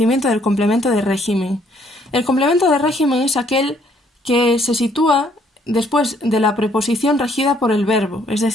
del complemento de régimen. El complemento de régimen es aquel que se sitúa después de la preposición regida por el verbo, es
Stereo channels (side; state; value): both; normal; correlation 0.65